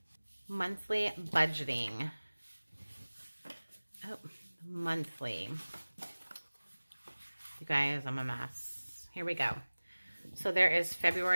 budgeting. Oh, monthly. You guys, I'm a mess. Here we go. So there is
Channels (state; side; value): inverted; both; correlation -1.00